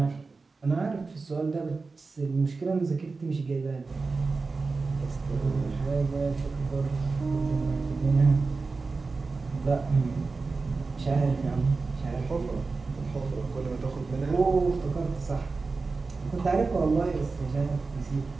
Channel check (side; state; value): left; quieter; 4.1 dB